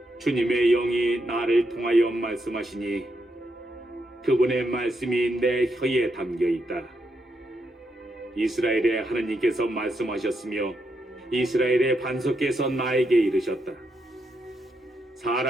주님의 영이 나를 통하여 말씀하시니 그분의 말씀이 내 혀에 담겨 있다. 이스라엘의 하느님께서 말씀하셨으며 이스라엘의 반석께서 나에게 이르셨다.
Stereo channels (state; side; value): normal; both; correlation 0.81